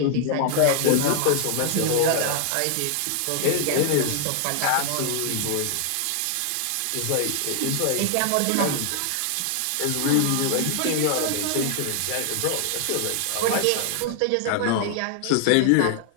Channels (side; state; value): both; different; correlation 0.00